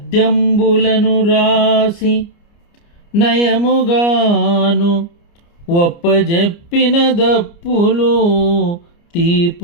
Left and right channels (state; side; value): late; right; 29 ms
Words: రాసి నయముగాను ఒప్పజెప్పిన దప్పులు